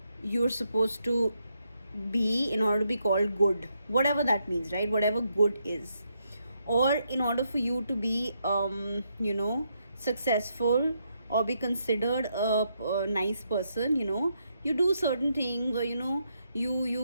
supposed to be in order to be called good, whatever that means, right? Whatever good is. Or in order for you to be successful or be considered a nice person, you do certain things, or you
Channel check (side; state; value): both; inverted; correlation -0.78